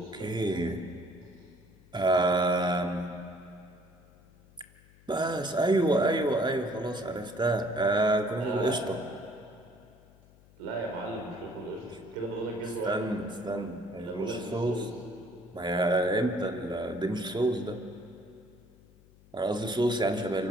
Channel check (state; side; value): noise; left; hum, 26 dB below the sound